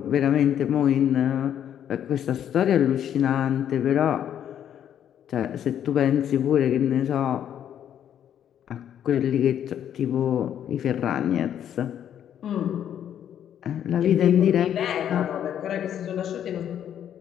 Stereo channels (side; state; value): right; quieter; 9.8 dB